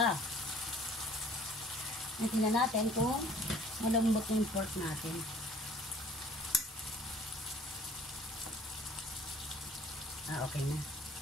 Tingnan natin kung malambot yung pork natin. Okay na.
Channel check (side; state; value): both; normal; correlation 0.53